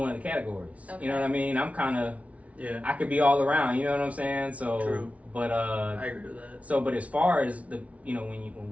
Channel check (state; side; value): late; left; 0.066 ms